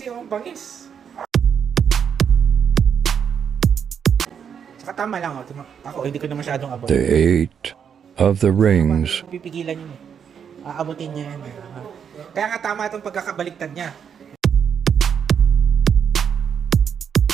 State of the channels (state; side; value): quieter; left; 7.5 dB